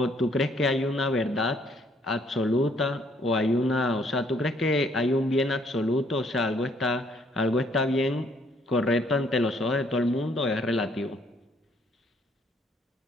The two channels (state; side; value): normal; both; correlation 0.65